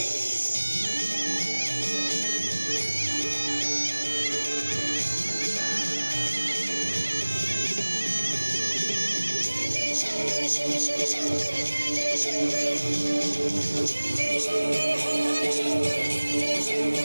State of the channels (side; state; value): both; inverted; correlation -1.00